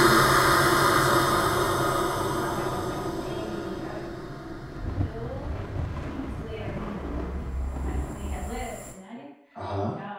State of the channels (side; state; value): both; identical; correlation 1.00